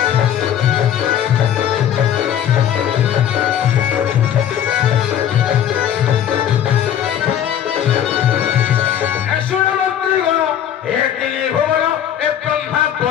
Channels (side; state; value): right; quieter; 10.0 dB